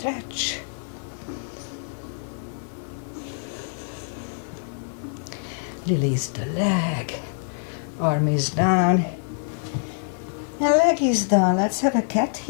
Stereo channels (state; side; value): silent; right; digital silence